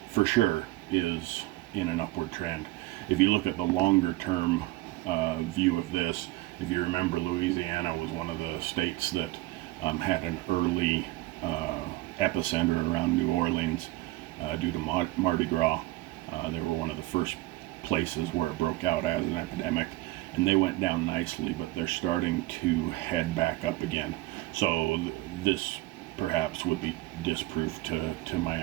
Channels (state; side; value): quieter; left; 18.9 dB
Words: for sure is in an upward trend. If you look at the longer term view of this, if you remember, Louisiana was one of the states that had an early epicenter around New Orleans due to Mardi Gras. They were one of the first places where it broke out as an epidemic, and they went down nicely, but they're starting to head back up again. So this perhaps would be disproof to my